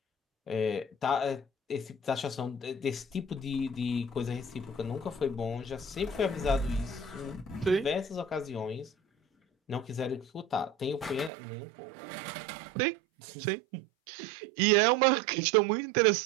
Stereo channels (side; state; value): left; drops out; at 11.3 s